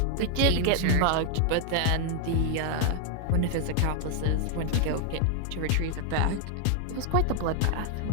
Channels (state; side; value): different; both; correlation 0.00